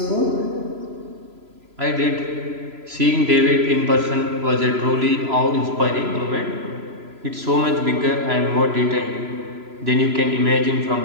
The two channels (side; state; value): left; late; 3.0 ms